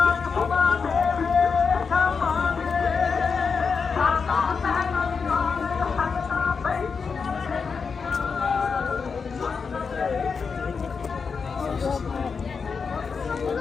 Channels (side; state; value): right; quieter; 5.4 dB